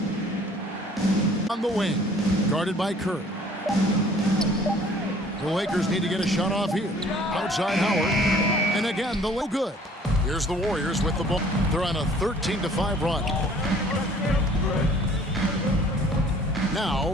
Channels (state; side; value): normal; both; correlation 0.54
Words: On the wing. Guarded by Curry. The Lakers need to get a shot off here. Outside Howard. And again, the low good. Here's the Warriors with the ball. They're on a 13-5 run.